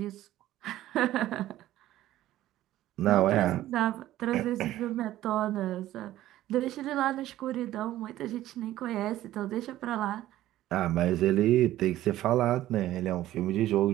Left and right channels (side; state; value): left; quieter; 14.3 dB